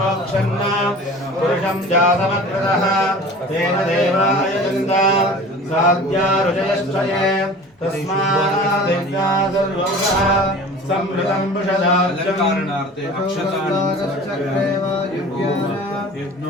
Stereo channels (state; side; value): normal; both; correlation 0.41